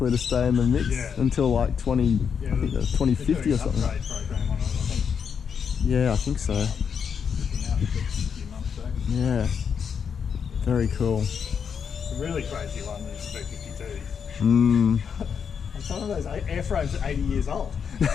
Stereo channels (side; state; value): right; quieter; 6.9 dB